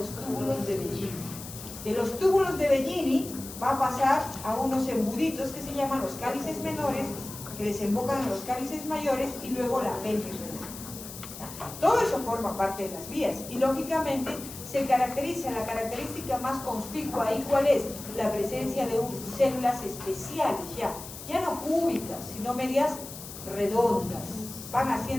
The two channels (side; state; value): left; noise; hiss, 12 dB below the sound